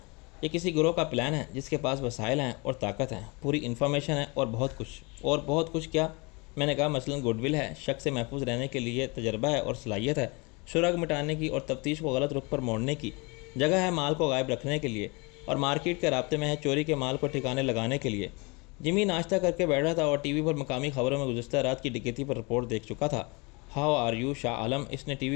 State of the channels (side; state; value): right; quieter; 28.5 dB